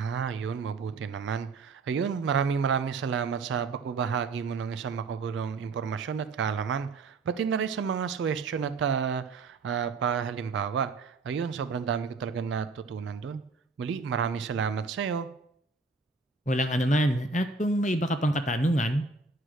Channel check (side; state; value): left; quieter; 4.0 dB